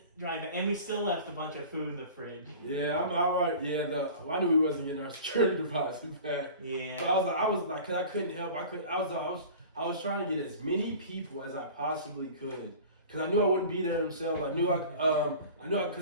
drive back. And we still left a bunch of food in the fridge. Yeah, I'm alright. Yeah, I knew we wasn't getting our security deposit back. Yeah. But I was like, because I couldn't help. I was trying to get as many people as I possibly could. Because I knew I wouldn't be there themselves. I knew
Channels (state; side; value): inverted; both; correlation -0.40